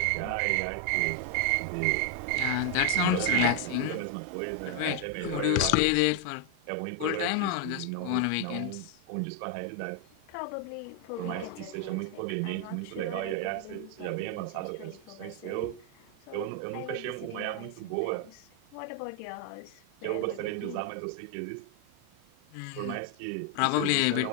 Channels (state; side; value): different; both; correlation 0.01